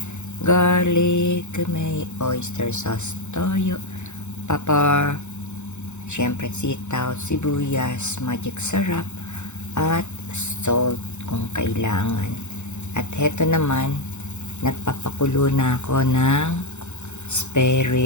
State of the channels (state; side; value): late; right; 0.83 ms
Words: Garlic, may oyster sauce, toyo, pepper, syempre sitaw, sibuyas, magic sarap, at salt kung kailangan. At heto naman, nagpapakulo na ako ng spare